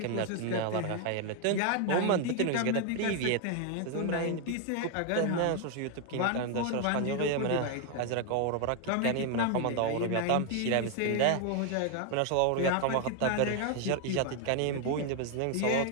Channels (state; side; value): different; both; correlation 0.00